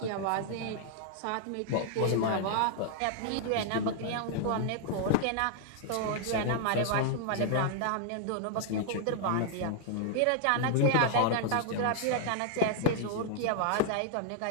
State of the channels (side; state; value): both; different; correlation -0.01